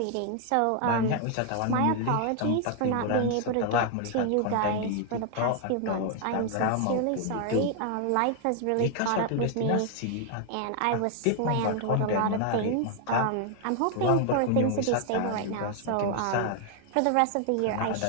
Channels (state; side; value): different; both; correlation 0.00